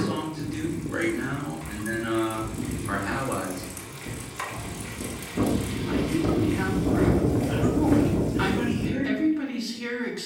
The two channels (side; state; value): both; identical; correlation 1.00